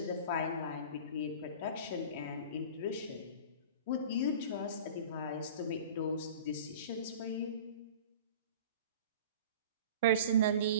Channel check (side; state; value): both; inverted; correlation -0.39